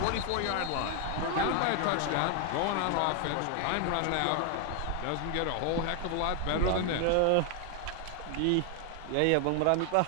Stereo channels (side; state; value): both; different; correlation 0.00